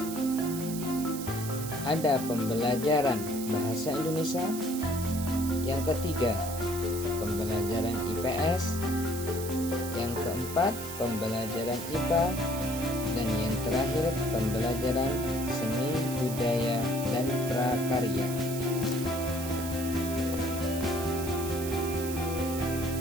ada pembelajaran Bahasa Indonesia, yang ketiga pembelajaran IPS, yang keempat pembelajaran IPA, dan yang terakhir pembelajaran seni, budaya, dan prakarya.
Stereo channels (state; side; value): noise; right; hiss, 9 dB below the sound